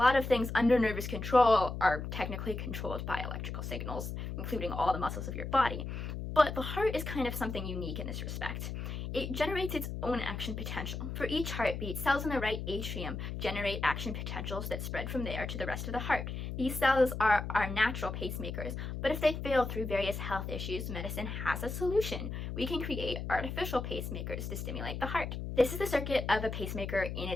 of things under nervous control are technically controlled by electrical signals, including all the muscles of your body. But the heart is kind of something unique in this respect. It generates its own action potential. For each heartbeat, cells in the right atrium generate action potentials that spread from there to the rest of the heart. These cells are our natural pacemakers, but if they fail through various health issues, medicine has a solution. We can create artificial pacemakers to stimulate the heart. This is the circuit of a pacemaker in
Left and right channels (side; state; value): left; noise; hum, 5 dB below the sound